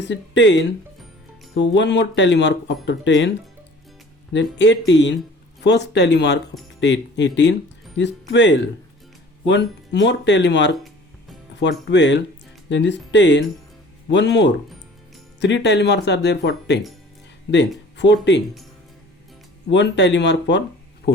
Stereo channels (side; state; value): both; normal; correlation 0.48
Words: is 10, so one more tally mark after 10, then 18, first tally mark after 18 is 12, one more tally mark for 12, then this 10, one more, 3 tally marks are there for 10, then 14, one tally mark for